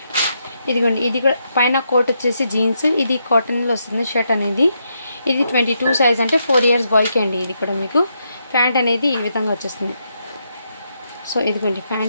ఇదిగోండి ఇది కూడా పైన కోట్ వచ్చేసి జీన్స్ ఇది కాటన్లో వస్తుంది షర్ట్ అనేది ఇది 22 సైజ్ అంటే 4 years బాయ్కి అండి ఇది కూడా మీకు ప్యాంట్ అనేది ఈ విధంగా వచ్చేస్తుంది సో ఇదిగోండి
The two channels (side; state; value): both; inverted; correlation -0.80